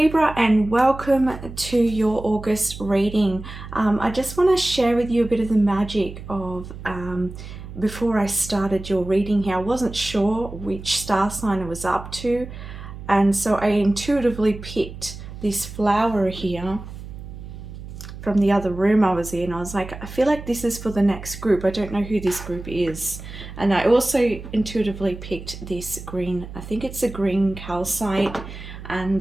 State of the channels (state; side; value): noise; right; hum, 12 dB below the sound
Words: and welcome to your August reading. I just want to share with you a bit of the magic of before I started your reading here. I wasn't sure which star sign I was up to, and so I intuitively picked this flower here from the other room I was in. I was like, I feel like this is for the next group. I don't know who this group is. And I also intuitively picked this green, I think it's a green calcite,